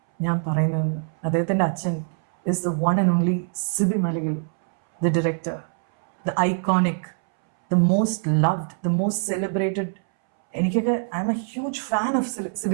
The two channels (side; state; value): left; silent; 63 dB below the other